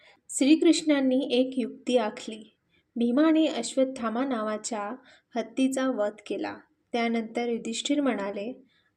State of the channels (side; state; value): both; identical; correlation 1.00